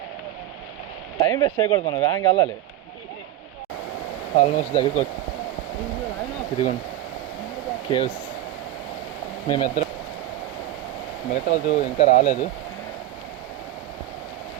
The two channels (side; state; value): left; quieter; 13.6 dB